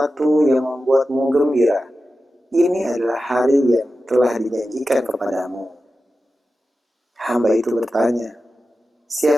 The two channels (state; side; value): normal; both; correlation 0.92